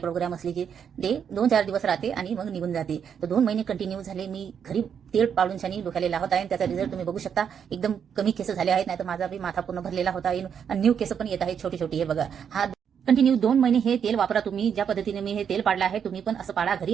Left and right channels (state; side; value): quieter; left; 7.7 dB